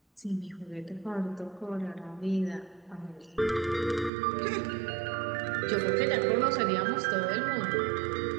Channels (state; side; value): drops out; left; at 4.1 s